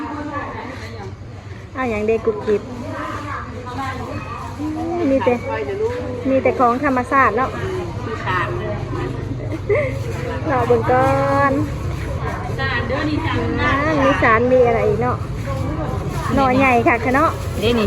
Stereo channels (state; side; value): identical; both; correlation 1.00